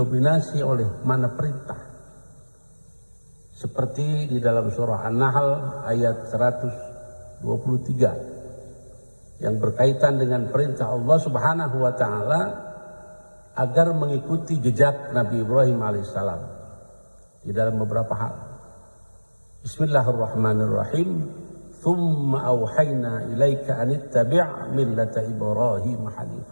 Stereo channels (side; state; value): both; inverted; correlation -1.00